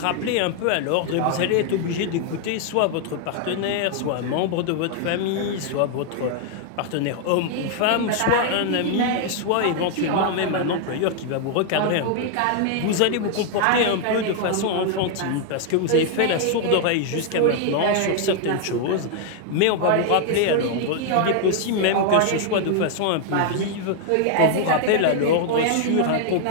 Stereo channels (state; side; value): different; both; correlation 0.00